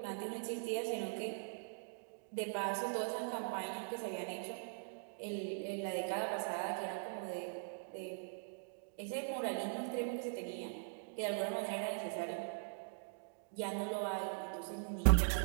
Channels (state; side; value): silent; left; digital silence